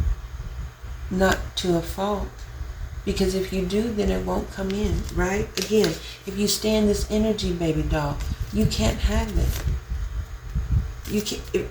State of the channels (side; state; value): both; identical; correlation 1.00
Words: not to a fault. Because if you do, then it won't come in, right? Again, if you stay in this energy, baby doll, you can't have it. You can,